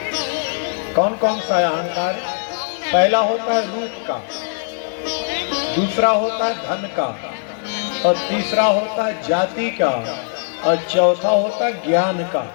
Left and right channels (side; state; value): right; silent; digital silence